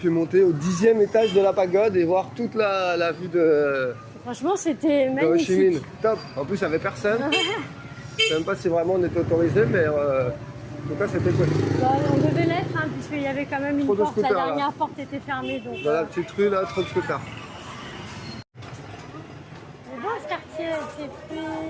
monter au 10e étage de la pagode et voir toute la vue de Franchement, c'était Ho Chi Minh. magnifique. Top. En plus, il n'y avait personne. Je sais même pas si vraiment on était autorisé, mais en tout cas, c'était cool. Bah, on devait l'être, hein, puisqu'il y avait quand même une Trop de porte. La scooters, là. dernière porte était fermée. Donc, Dans la petite rue, là, trop de scooters. c'est beau ce quartier, avec ses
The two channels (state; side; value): identical; both; correlation 1.00